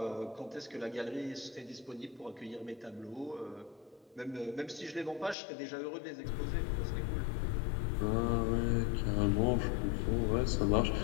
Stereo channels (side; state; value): right; drops out; at 5.4 s